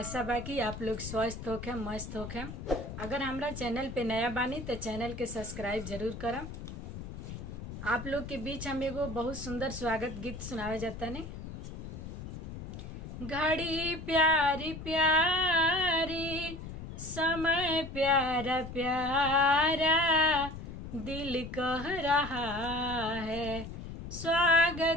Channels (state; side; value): noise; left; rumble, 9 dB below the sound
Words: बा कि आप लोग स्वस्थ होखे, मस्त होखे। अगर हमरा चैनल पे नया बानी तो चैनल के सब्सक्राइब जरूर करम। आप लोग के बीच हम एगो बहुत सुंदर स्वागत गीत सुनावे जाता ने। घड़ी प्यारी प्यारी, समय प्यारा प्यारा, दिल कह रहा है